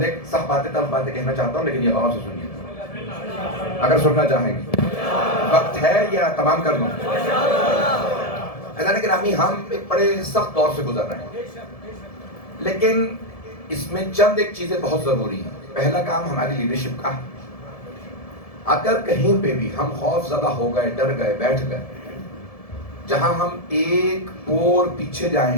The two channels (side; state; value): right; late; 1.7 ms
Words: ایک سخت باتیں تلخ باتیں کہنا چاہتا ہوں, لیکن یہ غور سے سنیے اگر سننا چاہیں گے. وقت ہے یا تمام کر دوں؟ اللہ نے گرامی, ہم ایک بڑے سخت دور سے گزر رہے ہیں, لیکن اس میں چند ایک چیزیں بہت ضروری ہیں. پہلا کام ہماری لیڈرشپ کا ہے. اگر کہیں پہ بھی ہم خوف زدہ ہو گئے, ڈر گئے, بیٹھ گئے, جہاں ہم ایک پور پیچھے